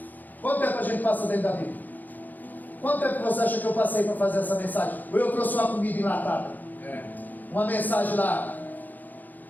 Quanto tempo a gente passa dentro da Bíblia? Quanto tempo você acha que eu passei para fazer essa mensagem? Ou eu trouxe uma comida enlatada? Uma mensagem lá,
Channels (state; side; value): late; right; 0.084 ms